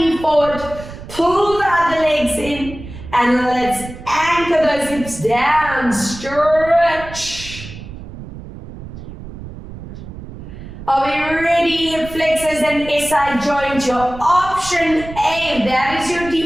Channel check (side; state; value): right; noise; rumble, 13 dB below the sound